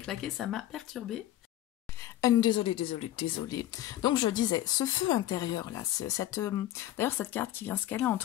ça m'a perturbée. Désolée. Donc je disais, ce feu intérieur là, d'ailleurs cette carte qui vient se caler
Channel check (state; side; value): quieter; right; 13.6 dB